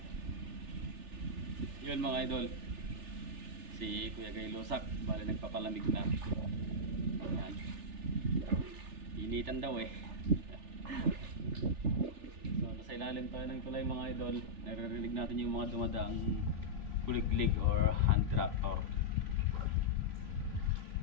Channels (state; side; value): late; left; 3.4 ms